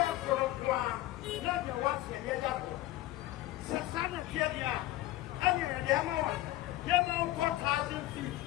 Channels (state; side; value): quieter; right; 16.3 dB